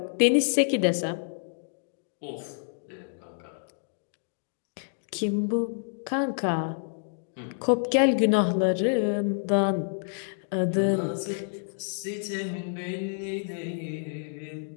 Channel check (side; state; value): right; silent; digital silence